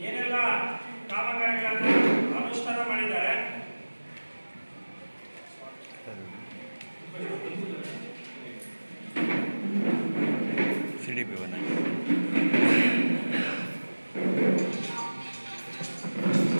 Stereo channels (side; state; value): both; inverted; correlation -1.00